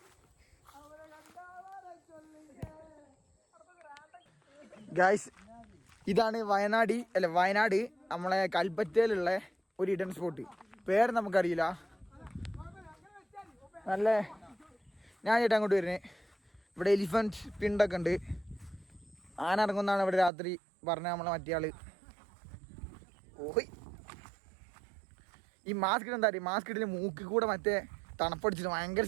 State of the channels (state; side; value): drops out; left; at 20.3 s